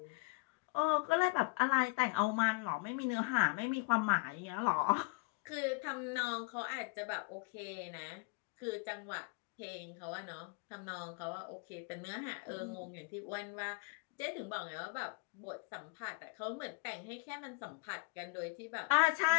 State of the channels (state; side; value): quieter; right; 27.5 dB